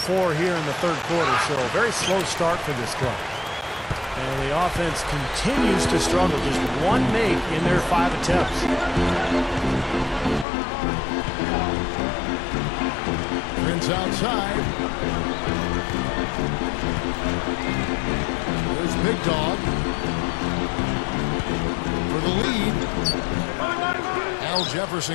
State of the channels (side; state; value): right; drops out; at 10.5 s